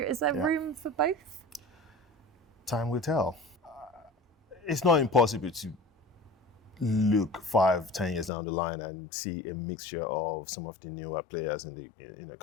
Is there room for both? Time will tell. It's not impossible to look 5-10 years down the line and see a mixture of some of the newer players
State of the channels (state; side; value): drops out; right; at 8.3 s